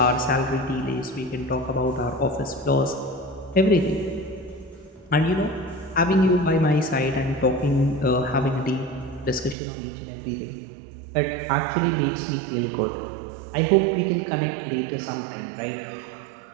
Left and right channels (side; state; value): left; drops out; at 9.6 s